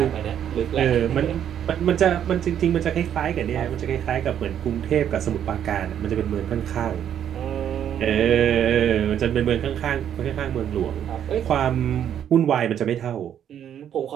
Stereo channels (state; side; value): quieter; left; 9.6 dB